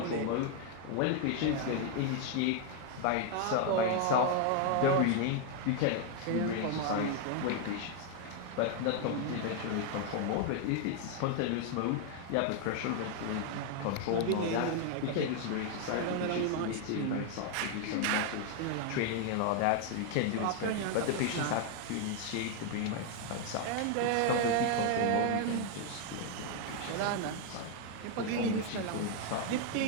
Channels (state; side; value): different; both; correlation 0.00